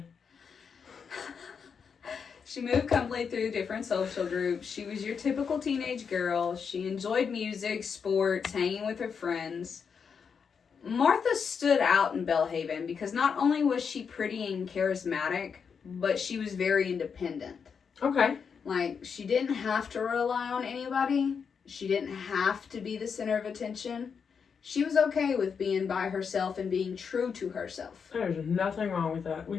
She moved comfortably through different social groups. She was your typical teenage girl. She enjoyed music, sports, hanging with her friends. Martha stood out in Bellhaven because not only was she pretty and charismatic, but she was very independent. Okay. Like, she didn't have to rely on anybody. She didn't have to be the center of attention. She was okay with being by herself and being true to herself. There's nothing wrong with that. We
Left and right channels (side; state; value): right; quieter; 6.3 dB